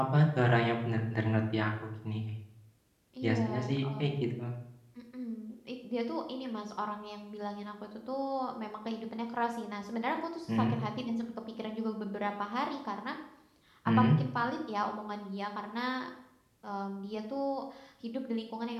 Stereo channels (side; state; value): both; identical; correlation 1.00